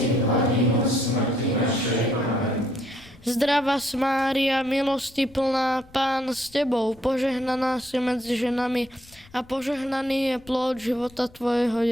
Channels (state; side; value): noise; left; rumble, 25 dB below the sound